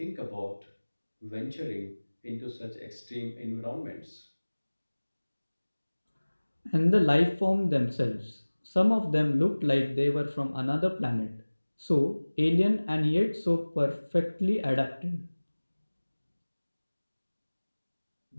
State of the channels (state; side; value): inverted; both; correlation -1.00